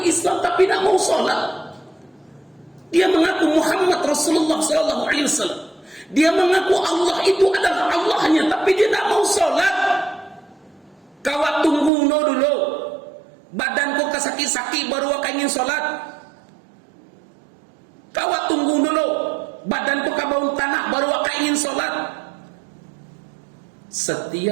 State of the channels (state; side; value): drops out; left; at 11.9 s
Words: Islam tapi tidak mau sholat. Dia mengaku Muhammad Rasulullah SAW. Dia mengaku Allah itu adalah Allahnya, tapi dia tidak mau sholat. Kawat tunggu dulu, badanku kesaki-saki baru aku ingin sholat. Kawat tunggu dulu, badanku kabau tanah baru aku ingin sholat.